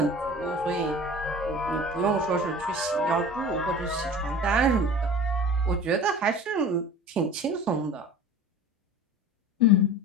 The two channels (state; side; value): normal; both; correlation 0.39